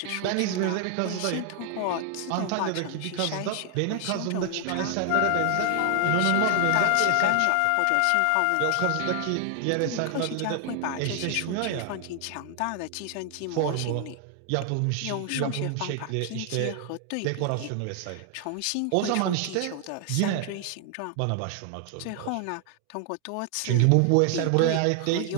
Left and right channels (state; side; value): different; both; correlation 0.00